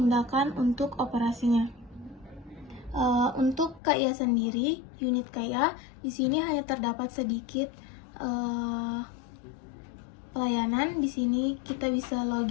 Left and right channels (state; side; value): drops out; right; at 3.8 s